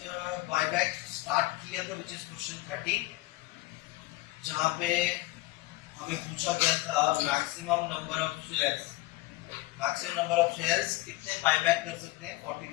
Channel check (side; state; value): right; quieter; 19.5 dB